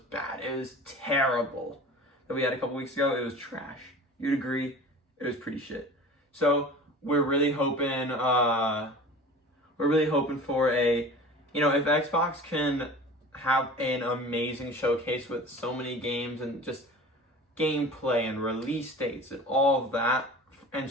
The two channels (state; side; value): normal; both; correlation 0.39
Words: It was terrible. That we had a couple weeks ago, it was trash. You'd agree, it was pretty shit. So we're really hoping for a, if Xbox can have an amazing showcase with so many games and just gameplay and release dates and all of that, and